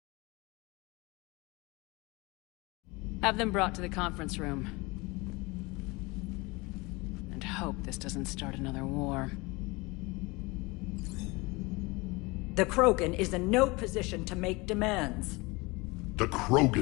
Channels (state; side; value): quieter; right; 24.6 dB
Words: Have them brought to the conference room. And hope this doesn't start another war. The Krogan is in no position to make demands. The